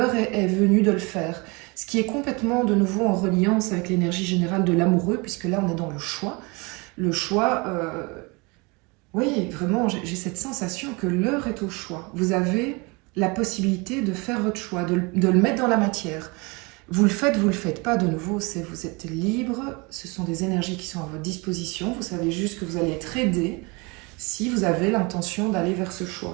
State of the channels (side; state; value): left; quieter; 27.8 dB